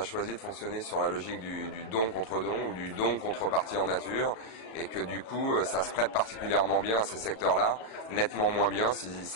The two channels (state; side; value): late; right; 37 ms